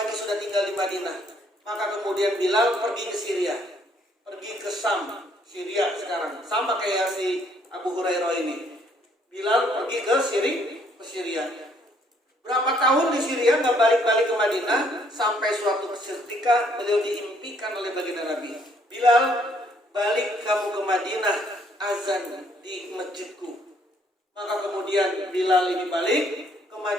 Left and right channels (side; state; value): both; normal; correlation 0.66